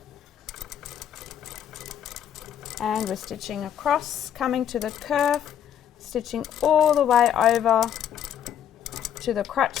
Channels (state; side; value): quieter; right; 9.6 dB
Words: And we're stitching across, coming to the curve, stitching all the way over to the crotch